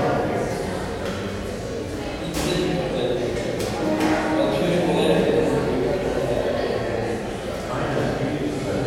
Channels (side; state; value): both; identical; correlation 1.00